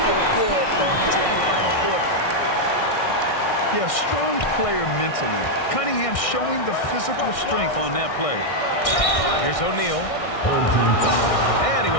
feel good going into that final quarter. Yeah, strong player mentally. Cunningham showing the physical strength on that play. Here's O'Neal. Home team foul. And he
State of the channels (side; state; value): right; late; 1.6 ms